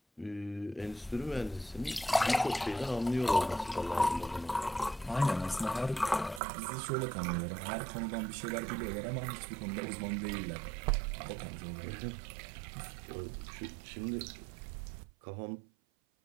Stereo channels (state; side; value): drops out; left; at 6.4 s